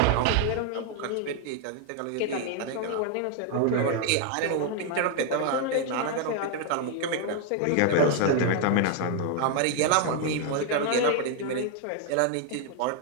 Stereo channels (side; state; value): both; different; correlation 0.00